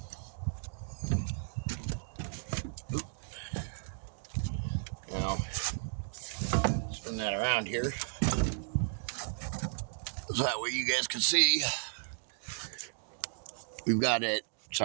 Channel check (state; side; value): silent; left; digital silence